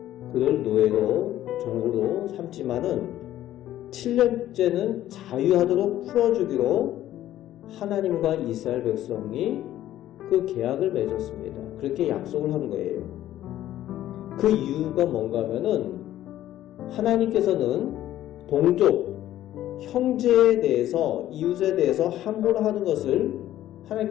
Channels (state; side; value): quieter; right; 13.2 dB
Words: 그를 노예로 종으로 삼지만은 7년째는 자유하도록 풀어주기로 하나님과 이스라엘 백성이 그 계약을 맺었습니다. 그렇게 약속을 한 거예요. 그 이유가 뭔가 하면은 하나님께서는 동족, 형제에 대해서, 이웃에 대해서 함부로 하는 것을